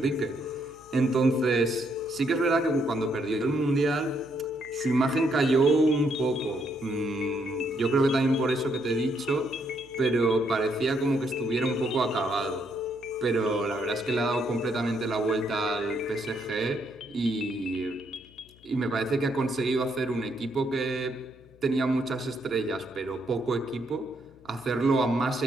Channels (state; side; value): noise; left; hum, 26 dB below the sound